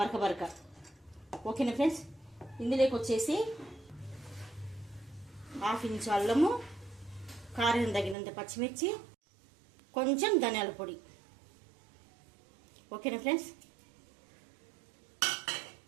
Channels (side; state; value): left; drops out; at 8.2 s